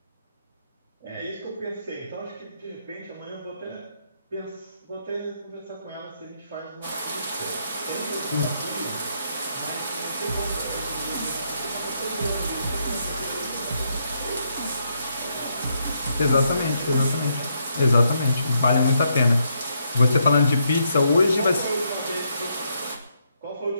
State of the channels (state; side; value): inverted; both; correlation -0.77